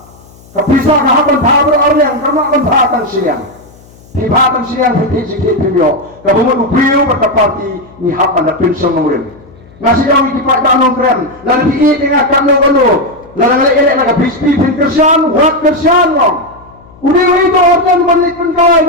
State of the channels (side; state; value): left; noise; hum, 25 dB below the sound